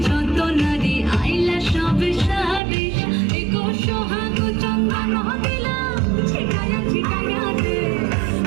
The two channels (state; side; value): drops out; left; at 2.6 s